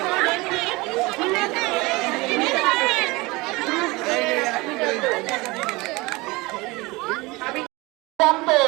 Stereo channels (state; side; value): quieter; left; 23.2 dB